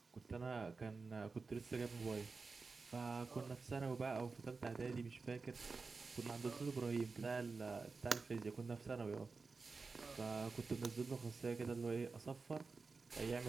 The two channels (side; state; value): left; quieter; 4.3 dB